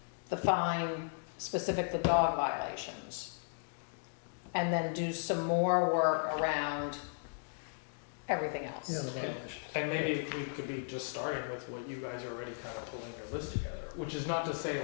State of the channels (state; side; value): silent; right; digital silence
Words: the fine specific to dog violations, and then do some more work around everything else. Yeah, the violation. And maybe we could be just starting with what you guys are already kind of pulling your list together, which is not to say